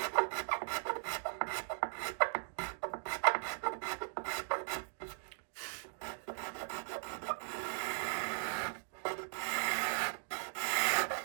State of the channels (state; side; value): silent; left; digital silence